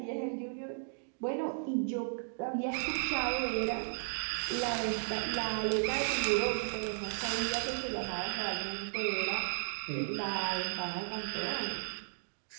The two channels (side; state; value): left; silent; digital silence